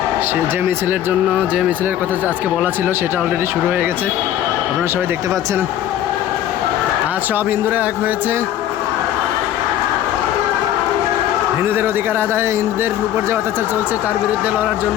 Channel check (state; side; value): quieter; right; 11.7 dB